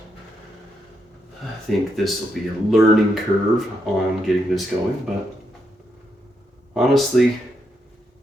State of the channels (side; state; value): both; normal; correlation 0.81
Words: I think this will be a learning curve on getting this going, but honestly,